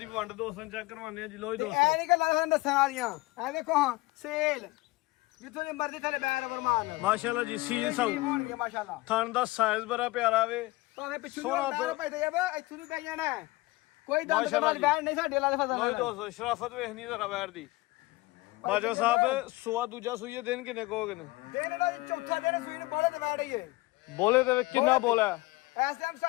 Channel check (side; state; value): right; quieter; 21.4 dB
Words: ਵੰਡ ਦੋਸਤਾਂ ਚੈੱਕ ਕਰਵਾਉਂਦੇ ਆ ਜੀ ਲੋ ਜੀ ਦੋਸਤੋ ਐ ਨਹੀਂ ਗੱਲਾਂ ਤੁਹਾਨੂੰ ਦੱਸਣ ਵਾਲੀਆਂ ਐ ਦੇਖੋ ਹਾਂ ਸੇਲ ਜਿੱਥੋਂ ਦੀ ਮਰਜ਼ੀ ਥੱਲੇ ਬੈਰ ਗੁਰਮਾਨ ਮਾਸ਼ਾਅੱਲਾ ਜੀ ਸੀਲ ਸਾਊ ਹੋਣਗੇ ਮਾਸ਼ਾਅੱਲਾ ਥਣ ਦਾ ਸਾਈਜ਼ ਬੜਾ ਪਿਆਰਾ ਵੇ ਭਾਵੇਂ ਪਿੱਛੋਂ ਸੋਹਣਾ ਬੈਰ ਭਾਈ ਤੈਯਬ ਇੱਥੋਂ ਦੀ ਪੈ ਜਾਣਾ ਕੋਈ ਦੰਦ ਦੇ ਬਾਅਦ ਬੈਰ ਨਹੀਂ ਸਾਡੇ ਵਾਲਾ ਦੇ ਫਜ਼ਲ ਲੋ ਜੀ ਦੋਸਤੋ ਸ਼ਰਾਫਤ ਵੇਖਣੀ ਜ਼ਰਾ ਵੈਰ ਦੀ ਬਾਜਵਾ ਸਾਹਿਬ ਸੂਆ ਦੂਜਾ ਸੂਈ ਹੈ ਦਿਨ ਕਿੰਨੇ ਕੋਗੇ ਨੇ ਦਿਨ ਇਹਦਾ ਚੌਥਾ ਦਿਨ ਸੂਈ ਨੂੰ ਬੋਲੇ ਤੇ ਵੈੜ ਹੀ ਹੈ ਬੋਲੇ ਤੇ ਕਿੰਨਾ ਬੋਲਾ ਇਸ ਟਾਈਮ